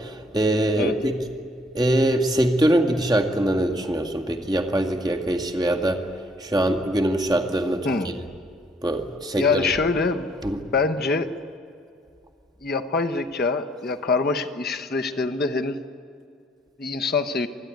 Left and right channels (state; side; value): normal; both; correlation 0.64